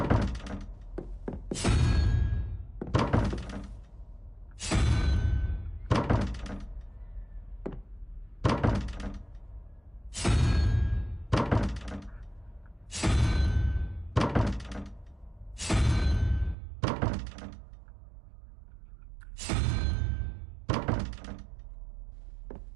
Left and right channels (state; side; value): drops out; left; at 16.6 s